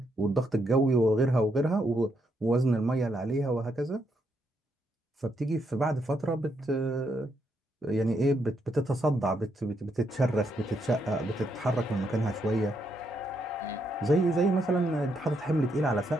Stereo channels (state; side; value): normal; both; correlation 0.77